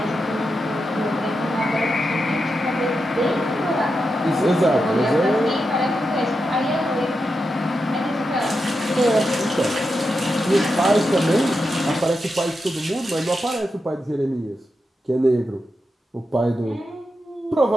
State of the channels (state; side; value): normal; both; correlation 0.87